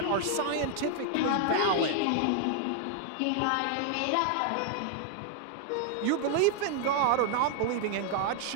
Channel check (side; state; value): both; different; correlation 0.00